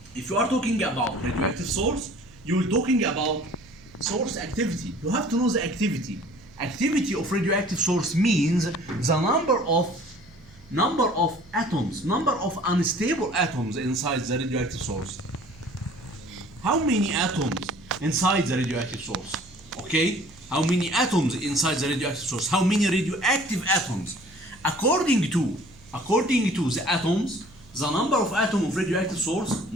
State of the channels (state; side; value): noise; right; hum, 25 dB below the sound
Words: talking about radioactive source, you're talking about source activity. You have to know the activity. Activity of radioactive source means the number of atoms, number of unstable atoms inside the radioactive source. How many atoms inside the radioactive source? Okay? How many atoms inside the radioactive source? How many radioactive atoms? According to the atoms, the number of atoms of radioactive source,